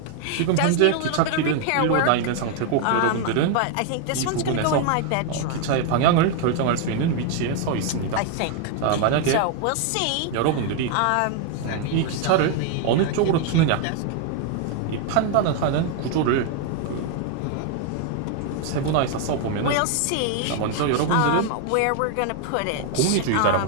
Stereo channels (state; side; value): different; both; correlation 0.00